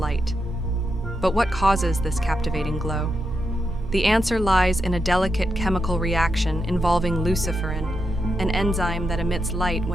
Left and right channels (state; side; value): normal; both; correlation 0.85